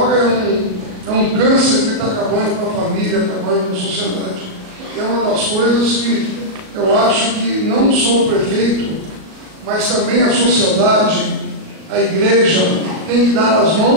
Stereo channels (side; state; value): left; late; 37 ms